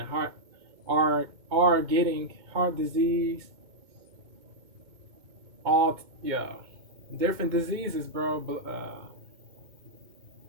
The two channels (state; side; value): late; left; 2.2 ms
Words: getting heart disease. Different diseases, bro. But